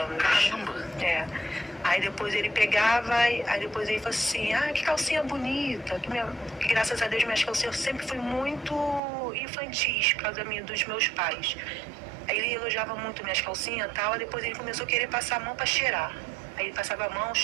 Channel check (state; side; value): drops out; left; at 9.0 s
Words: Caramba! É. Aí depois ele pegava, aí depois ele falou assim, que calcinha bonita. Que graças a Deus minhas calcinhas sempre fui muito infantis por causa dos meus pais. Aí ele elogiava muito minhas calcinhas e tal, aí depois ele começou a querer passar a mão para cheirar. Aí ele passava a mão,